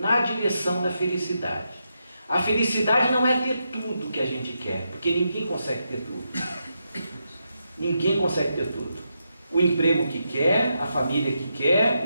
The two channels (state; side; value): inverted; both; correlation -0.84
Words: direção da felicidade. A felicidade não é ter tudo que a gente quer, porque ninguém consegue ter tudo. Ninguém consegue ter tudo. O emprego que quer, a família que